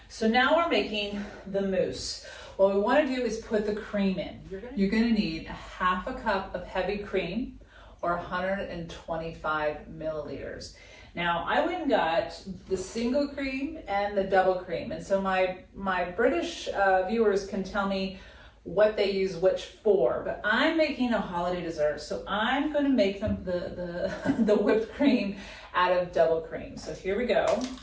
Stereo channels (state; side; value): identical; both; correlation 1.00